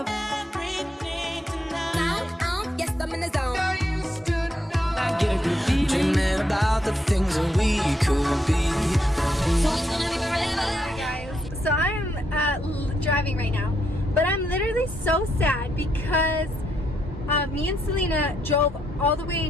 everything tonight. Yes, I'm in the zone. I get a good feeling. Dreaming about the things that we could be. Guys, so I'm driving right now, but I'm literally so sad because me and Selena drove all the way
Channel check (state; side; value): normal; both; correlation 0.78